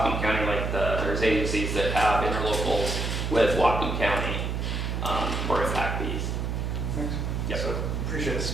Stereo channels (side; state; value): right; noise; hum, 1 dB below the sound